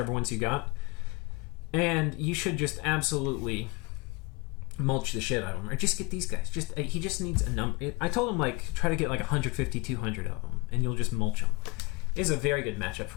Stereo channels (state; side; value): quieter; right; 25.4 dB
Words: ones you got. And you should just absolutely mulch the shit out of him. Or just get these guys. He just needs a number. I told him, try to get 150, 200 of them, and you'll just mulch them. It is a very good matchup